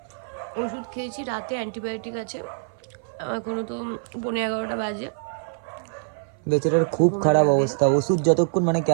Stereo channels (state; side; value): silent; left; 57 dB below the other